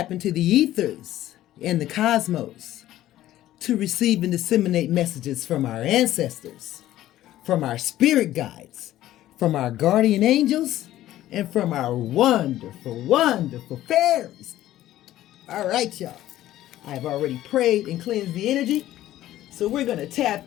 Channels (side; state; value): right; quieter; 14.0 dB